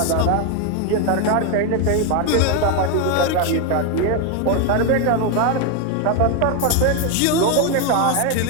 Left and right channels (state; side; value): different; both; correlation 0.01